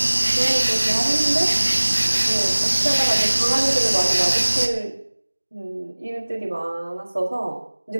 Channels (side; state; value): both; inverted; correlation -1.00